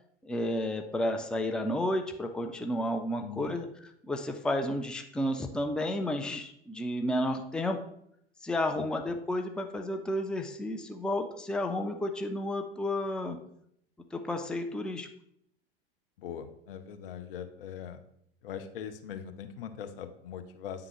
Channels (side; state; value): both; normal; correlation 0.72